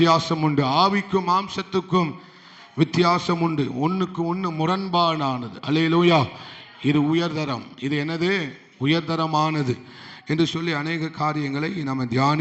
உண்டு. ஆவிக்கும் மாம்சத்துக்கும் வித்தியாசம் உண்டு. ஒன்றுக்கு ஒன்று முரண்பாடானது. அல்லேலூயா. இது உயர்தரம், இது என்னது? உயர்தரமானது என்று சொல்லி அநேக காரியங்களை நம்ம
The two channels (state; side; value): identical; both; correlation 1.00